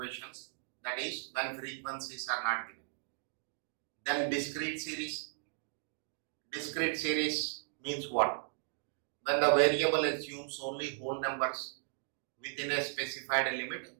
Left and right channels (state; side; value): silent; left; digital silence